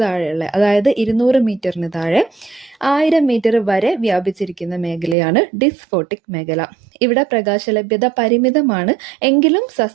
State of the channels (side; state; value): left; drops out; at 5.2 s